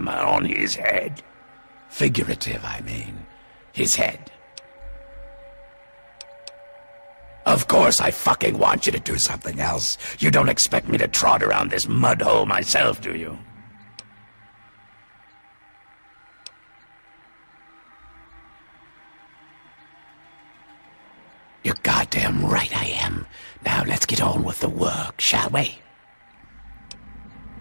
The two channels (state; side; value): inverted; both; correlation -1.00